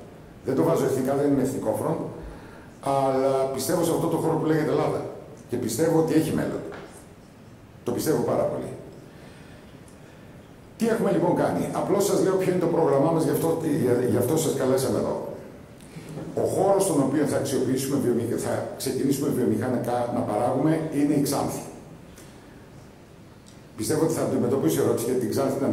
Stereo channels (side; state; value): both; identical; correlation 1.00